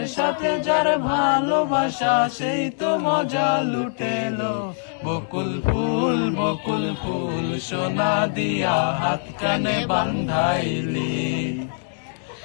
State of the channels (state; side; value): silent; right; 62 dB below the other